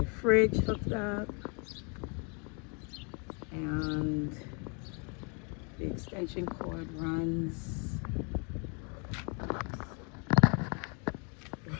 fridge hooked up, and the extension cord runs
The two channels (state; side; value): quieter; right; 35.8 dB